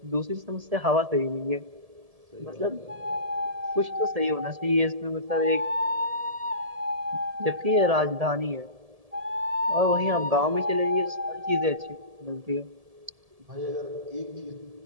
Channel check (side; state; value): left; late; 1.7 ms